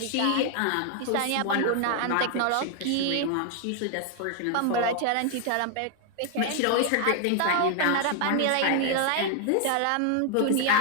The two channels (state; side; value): different; both; correlation 0.00